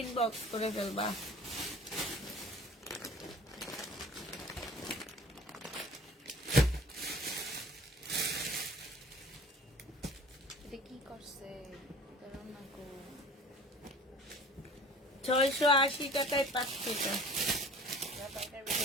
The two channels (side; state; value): both; normal; correlation 0.45